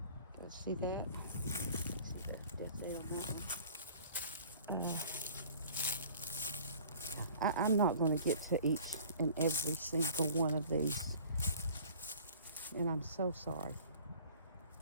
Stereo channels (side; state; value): both; inverted; correlation -0.48